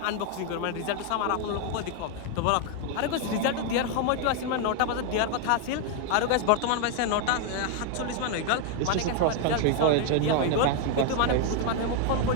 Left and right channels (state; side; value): different; both; correlation 0.01